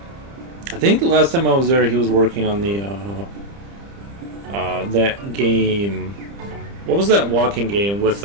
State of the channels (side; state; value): left; late; 30 ms